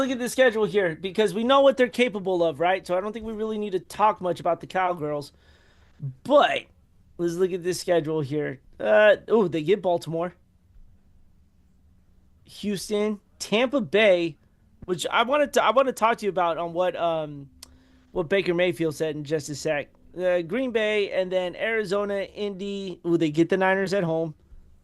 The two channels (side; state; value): both; identical; correlation 1.00